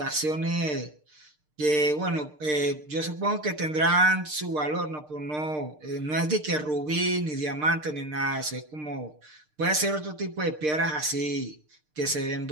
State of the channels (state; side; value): late; left; 6.6 ms